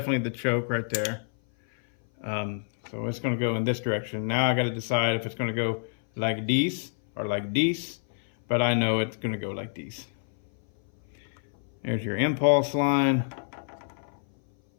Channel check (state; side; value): silent; right; 57 dB below the other